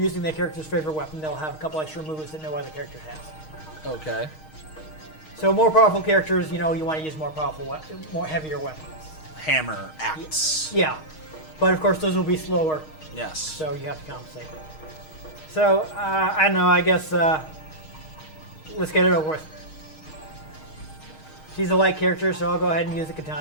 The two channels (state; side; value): late; right; 6.4 ms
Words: that character's favorite weapon, they'll have a couple extra moves that no other character has. Okay. So more powerful characters, you want to use more heavier weapons. Hammer, axe. Yeah, but of course those will be slower. Yes. So you have to compensate. So I don't know. I guess let's get it over with. She's a light character, so I'll go ahead and use the